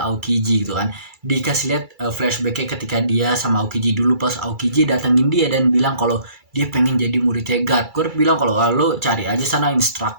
gitu kan. Dikasih lihat flashbacknya ketika dia sama Aokiji dulu, pas Aokiji datengin dia dan bilang kalau dia pengen jadi muridnya Garp. Garp bilang kalau lo cari aja sana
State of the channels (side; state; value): left; late; 2.3 ms